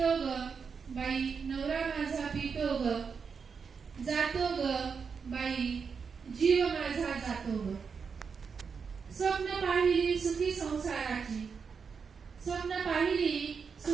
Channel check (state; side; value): quieter; left; 5.8 dB